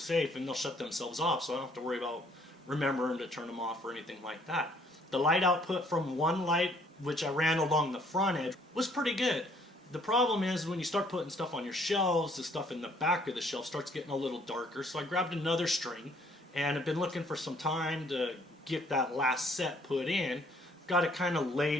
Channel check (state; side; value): normal; both; correlation 0.62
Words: and they'll shut themselves off. So I don't have to worry about remembering to turn them off or anything like that. The light output from one light, which I ran along the front edge, was pretty good. The problem is when you start putting stuff on your shelves, the stuff in the back of the shelf starts getting a little darker. So I grabbed another string, and I've been looking for some time to get that last set put in. Got it kind of